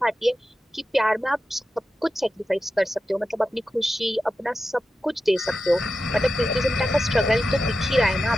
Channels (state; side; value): normal; both; correlation 0.91